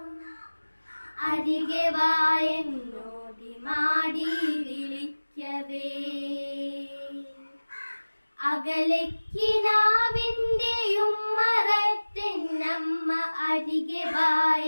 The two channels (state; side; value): inverted; both; correlation -1.00